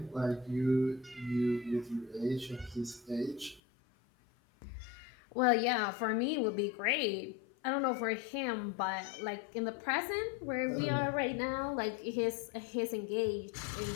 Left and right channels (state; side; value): drops out; right; at 3.6 s